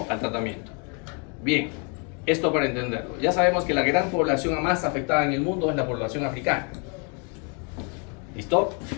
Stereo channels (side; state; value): right; quieter; 35.9 dB